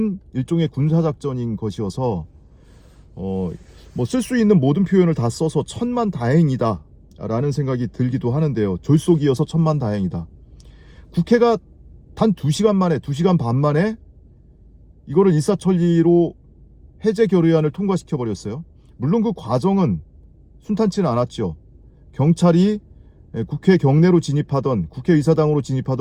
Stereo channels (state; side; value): identical; both; correlation 1.00